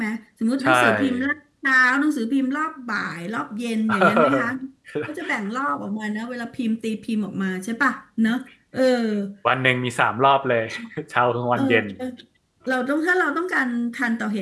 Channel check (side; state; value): both; identical; correlation 1.00